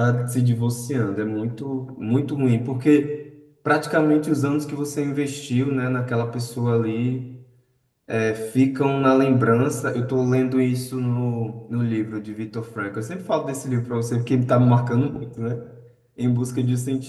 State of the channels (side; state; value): both; identical; correlation 1.00